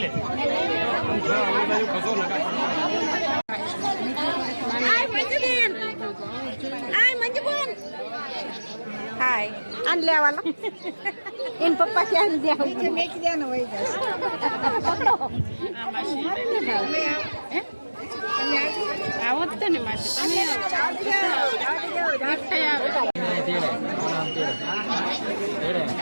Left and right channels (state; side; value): inverted; both; correlation -1.00